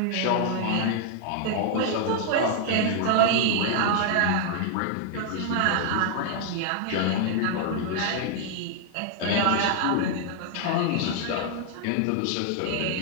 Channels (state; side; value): different; both; correlation 0.00